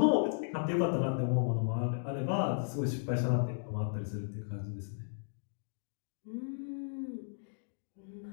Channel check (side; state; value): right; silent; digital silence